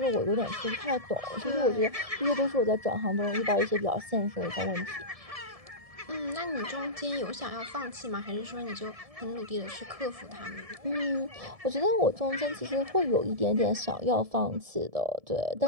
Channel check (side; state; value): left; late; 1.7 ms